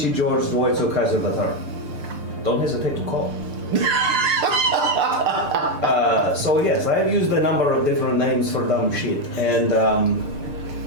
George Dwoitso Kaiser III. Don't hesitate to call. So yes, I have used a number of different names for dumb shit, and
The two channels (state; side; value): late; left; 6.7 ms